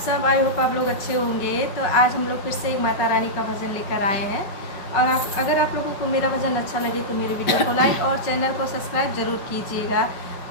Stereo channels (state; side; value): late; right; 5.3 ms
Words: आई होप आप लोग अच्छे होंगे। तो आज हम लोग फिर से एक माता रानी का भजन लेकर आए हैं। और अगर आप लोगों को मेरा भजन अच्छा लगे तो मेरे वीडियो को लाइक और चैनल को सब्सक्राइब ज़रूर कीजिएगा।